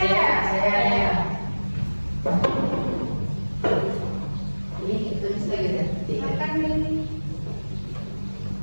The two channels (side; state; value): both; inverted; correlation -1.00